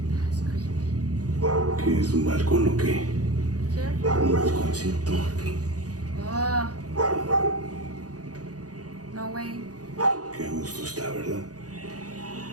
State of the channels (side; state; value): left; late; 0.68 ms